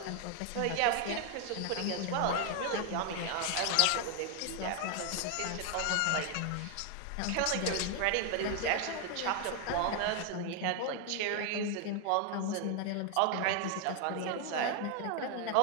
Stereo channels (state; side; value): different; both; correlation 0.00